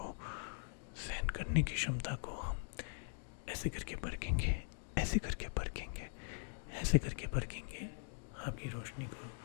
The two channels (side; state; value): right; silent; digital silence